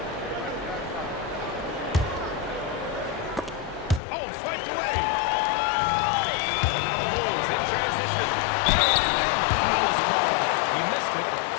Oh, flanked away. And now the Bulls in transition. And the foul is called. He missed it,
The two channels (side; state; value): right; drops out; at 4.0 s